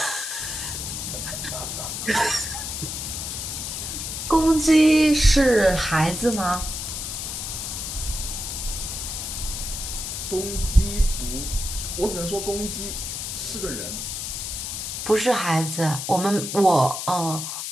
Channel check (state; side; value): noise; left; hiss, 5 dB below the sound